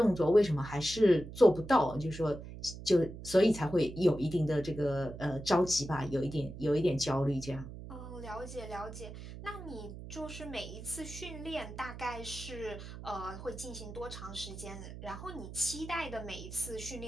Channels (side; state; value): right; noise; hum, 12 dB below the sound